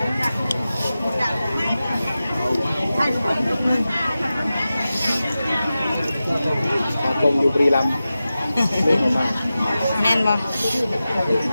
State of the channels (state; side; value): inverted; both; correlation -0.94